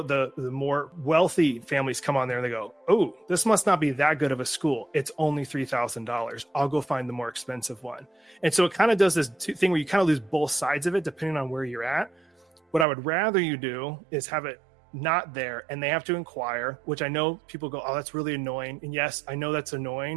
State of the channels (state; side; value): drops out; left; at 12.9 s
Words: the more wealthy families come on there and they go, oh, this must not be that good of a school. It's only $3,000. I'll go find the more expensive one. And so it kind of does this thing where you kind of lose both sides of it depending on where you're at. What I would rather you do is have it not there and they have to inquire, which I know people go, oh, that's really annoying. And yes, I know that's